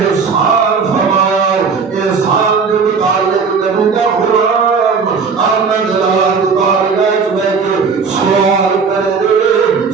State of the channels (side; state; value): left; quieter; 5.4 dB